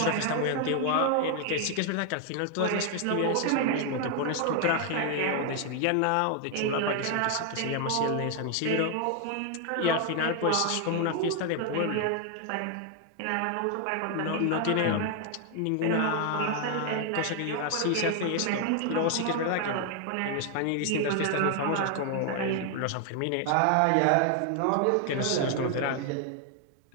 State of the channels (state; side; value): different; both; correlation 0.00